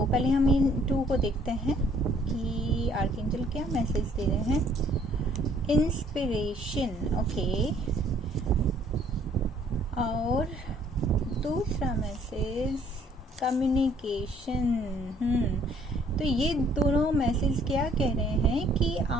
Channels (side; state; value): both; normal; correlation 0.62